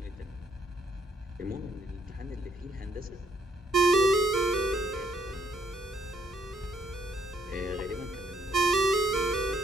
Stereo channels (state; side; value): normal; both; correlation 0.70